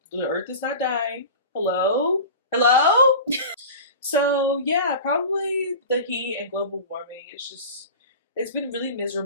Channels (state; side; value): inverted; both; correlation -0.34